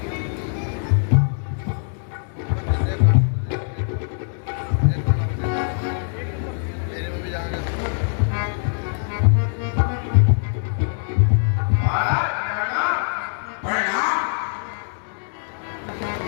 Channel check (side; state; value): right; silent; digital silence